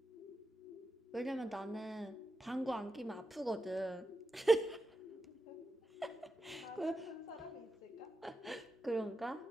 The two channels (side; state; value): both; normal; correlation 0.88